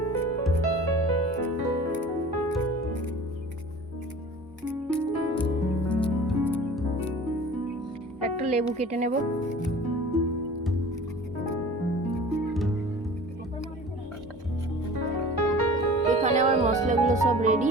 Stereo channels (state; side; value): normal; both; correlation 0.42